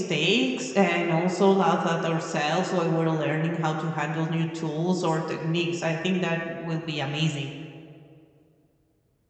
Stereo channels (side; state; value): both; identical; correlation 1.00